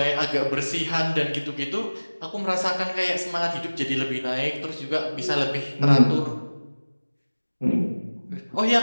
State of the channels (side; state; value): both; inverted; correlation -1.00